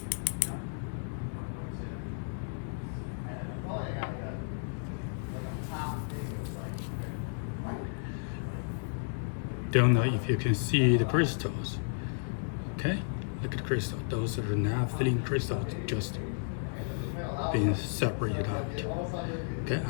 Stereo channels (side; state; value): right; silent; digital silence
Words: Don't know if you can see the crystals. Okay, look at the crystal. Those are the naphthalene crystals just being separated out. Okay,